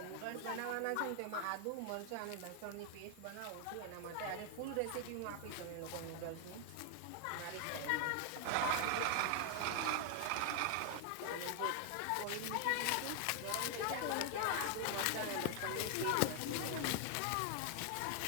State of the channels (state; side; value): different; both; correlation 0.00